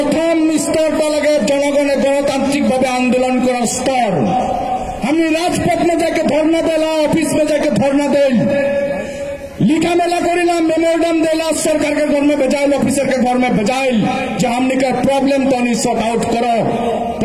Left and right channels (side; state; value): both; identical; correlation 1.00